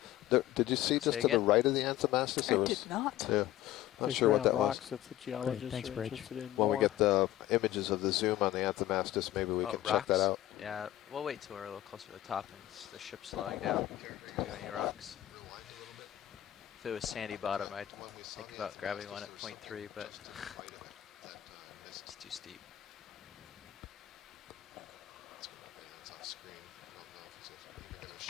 yeah. Did you see just Say to the again? right of the Anthemastus? I did not. Yeah. Not There's sure what round that rocks was. that the geologists Thanks, are Bridge. interested in When we more. get the images of the zoom on the Anthemastus, maybe we can check that rocks? out. Yeah, we'll wait till we're a little closer to the top and the ship's slowing down to do any rocks. If it was sandy bottom, I'd think about grabbing one at 0.3, but it's too steep.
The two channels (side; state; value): right; quieter; 14.1 dB